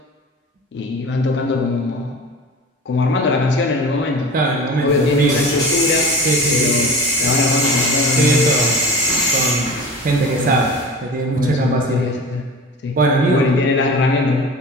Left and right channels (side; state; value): both; normal; correlation 0.36